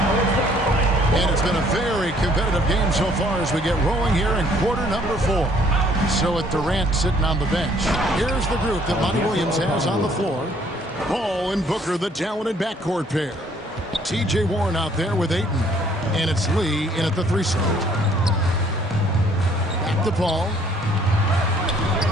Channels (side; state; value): both; normal; correlation 0.61